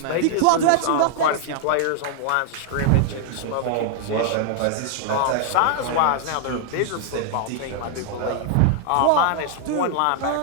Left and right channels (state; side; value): different; both; correlation 0.00